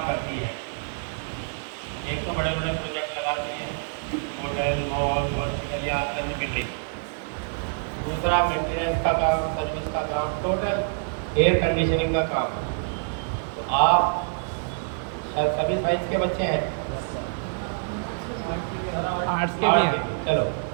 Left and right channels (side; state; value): left; silent; digital silence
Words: करती है। एक तो बड़े बड़े प्रोजेक्ट लगाती है, होटल, मॉल, हॉस्पिटल या अन्य बिल्डिंग। दूसरा मेंटेनेंस का काम, सर्विस का काम, टोटल एयर कंडीशनिंग का काम। तो आप सभी साइंस के बच्चे हैं, आर्ट्स के भी हैं। चलो,